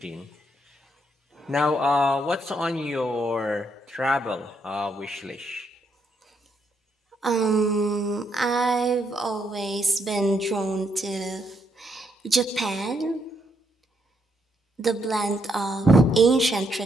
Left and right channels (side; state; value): both; normal; correlation 0.76